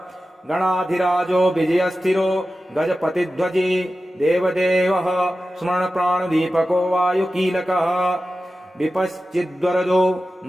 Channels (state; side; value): normal; both; correlation 0.94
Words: गणाधिराजो विजयस्थिरो गजपतिध्वजी देवदेवः स्मरणप्राणदीपको वायुकीलकः विपश्चिद्वरदो